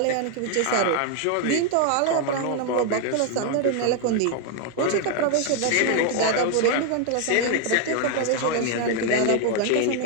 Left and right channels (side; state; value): both; different; correlation 0.00